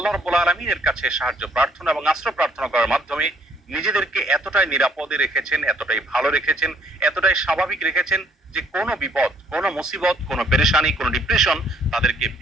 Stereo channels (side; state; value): both; normal; correlation 0.64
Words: রাব্বুল আলামিনের কাছে সাহায্য প্রার্থনা এবং আশ্রয় প্রার্থনা করার মাধ্যমে নিজেদেরকে এতটাই নিরাপদে রেখেছেন, এতটাই ভালো রেখেছেন, এতটাই স্বাভাবিক রেখেছেন যে কোনো বিপদ, কোনো মুসিবত, কোনো পেরেশানি, কোনো ডিপ্রেশন তাদেরকে